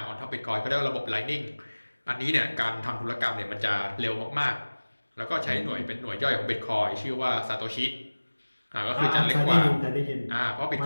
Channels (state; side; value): inverted; both; correlation -1.00